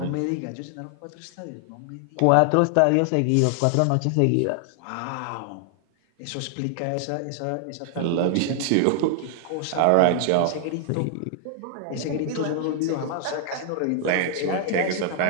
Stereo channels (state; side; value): different; both; correlation 0.00